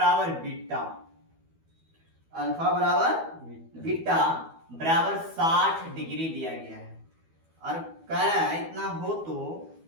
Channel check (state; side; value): late; left; 12 ms